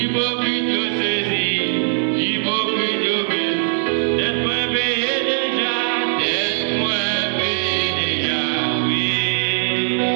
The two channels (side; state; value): left; silent; 66 dB below the other